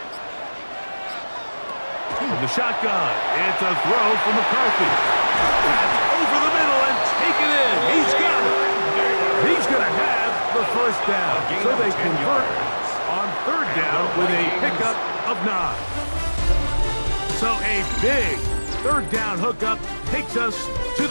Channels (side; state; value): both; inverted; correlation -1.00